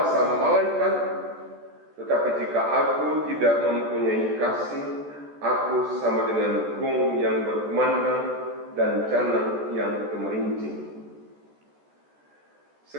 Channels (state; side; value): late; left; 14 ms